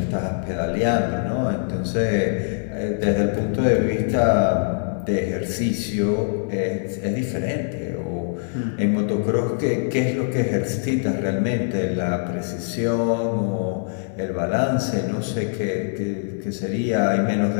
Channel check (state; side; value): silent; right; digital silence